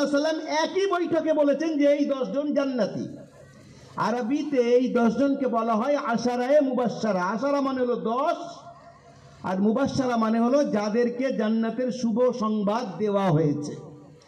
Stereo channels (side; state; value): both; identical; correlation 1.00